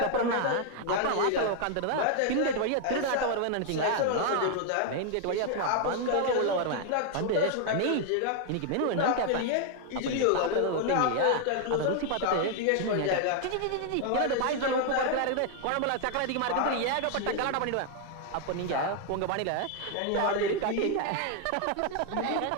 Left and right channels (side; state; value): both; different; correlation 0.00